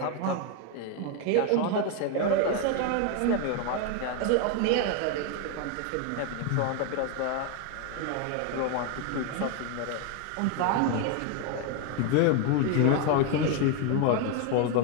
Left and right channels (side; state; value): both; different; correlation 0.01